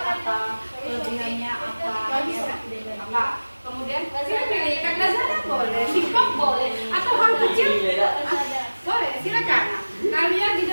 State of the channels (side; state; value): both; inverted; correlation -1.00